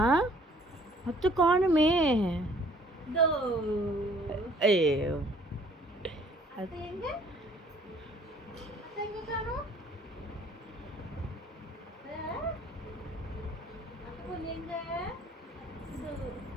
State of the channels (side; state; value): both; normal; correlation 0.57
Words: அத்தை காணுமே. தோ ஐயோ அத்தை எங்க? அத்தை எங்க காணோம்? அத்தை பொண்ணு எங்க? தோ